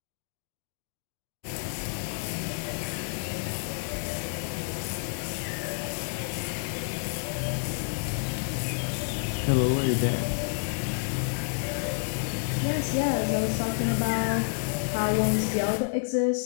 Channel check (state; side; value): silent; right; digital silence